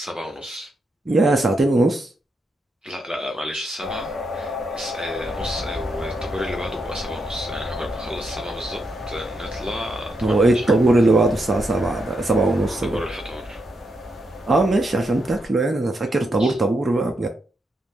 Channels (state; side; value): normal; both; correlation 0.82